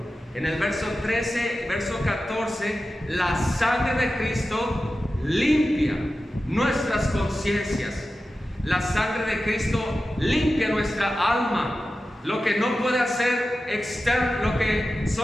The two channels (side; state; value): both; normal; correlation 0.93